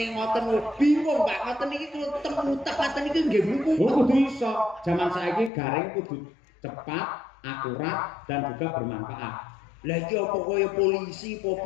ngoten bingung Pak, ngoten iki kulo temutek ngoten iki nggih mluku. Oh, kudu iso. Zaman saiki garing kudu cepat, akurat dan juga bermanfaat. Lah iki apa kaya polisi apa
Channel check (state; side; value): drops out; right; at 5.5 s